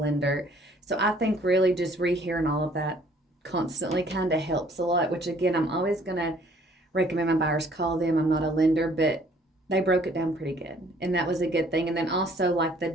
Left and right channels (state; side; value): normal; both; correlation 0.59